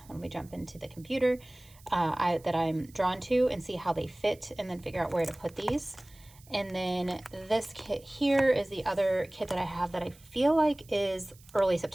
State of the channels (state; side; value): noise; right; hiss, 25 dB below the sound